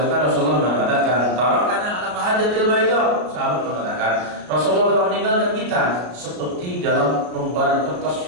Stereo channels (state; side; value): late; left; 33 ms